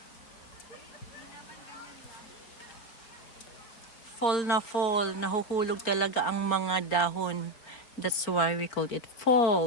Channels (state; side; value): late; right; 4.3 ms